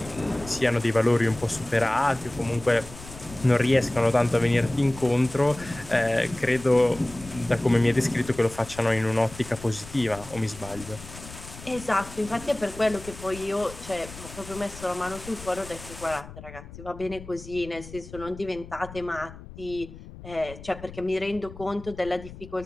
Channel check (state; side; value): noise; left; rumble, 15 dB below the sound